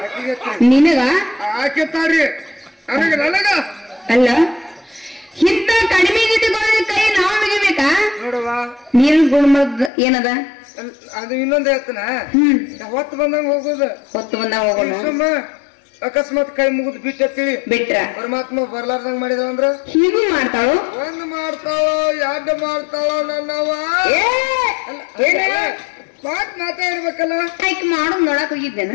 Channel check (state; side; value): drops out; right; at 9.9 s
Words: ನಿನಗ ಆಕೆತ್ತಾರಿ ನನಗ ಅಲ್ಲ ಇಂತ ಕಡಿಮೆ ಕೈ ನಾವು ಮುಗಿಬೇಕಾ? ನೋಡುವ ನೀರು ಗುಣಮದ ಏನದ ಅದು ಇನ್ನೊಂದ್ ಹೇಳ್ತಾನ. ಹೊತ್ತು ಬಂದಂಗ ಹೋಗುದು. ಹೊತ್ತು ಬಂದಂಗ ಹೋಗೋಣ. ಅಕಸ್ಮಾತ್ ಕೈ ಮುಗಿದ್ ಬಿಟ್ರ ಪರಮಾತ್ಮ ಬರ್ಲಾರ್ದಂಗ ಮಾಡಿದವ ಅಂದ್ರ ಹೀಗೂ ಮಾಡ್ತಾಳು. 1 ಮಾಡ್ತಾಳೋ 2 ಮಾಡ್ತಾಳೋ ನನ್ನವ ಮಾತ್ ಮಾತಾಡ್ಬೇಕಲ್ಲ. ಮಾಡೋದ್ ನೋಡಕ್ ಹೋಗಿದ್ದೇನೆ.